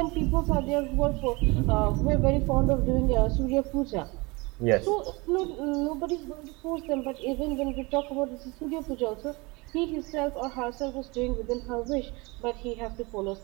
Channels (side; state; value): left; quieter; 25.7 dB